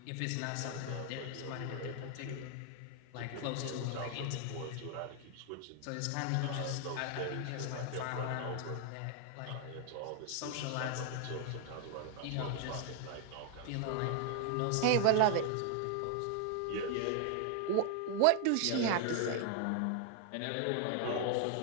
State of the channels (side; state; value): both; different; correlation 0.00